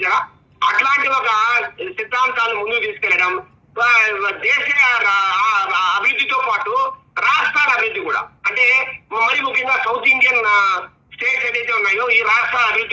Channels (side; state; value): both; identical; correlation 1.00